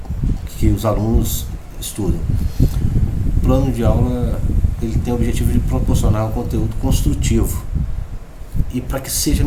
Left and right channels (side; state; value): both; identical; correlation 1.00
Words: que os alunos estudam. O plano de aula, ele tem o objetivo de proporcionar um conteúdo construtivo e para que seja